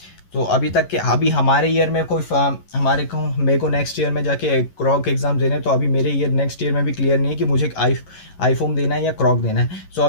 तो अभी तक के अभी हमारे ईयर में कोई मेरे को नेक्स्ट ईयर में जाके क्रॉक एग्ज़ाम देने, तो अभी मेरे ईयर नेक्स्ट ईयर में भी क्लियर नहीं है कि मुझे आईफोम देना है या क्रॉक देना है। सो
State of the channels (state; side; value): late; right; 11 ms